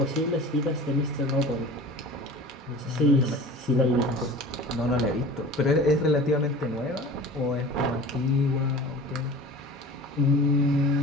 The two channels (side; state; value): both; normal; correlation 0.39